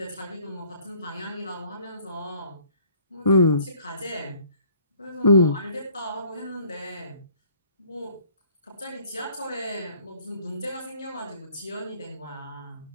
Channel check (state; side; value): inverted; both; correlation -0.57